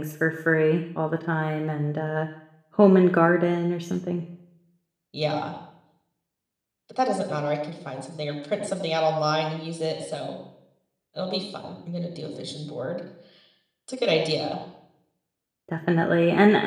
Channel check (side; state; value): both; identical; correlation 1.00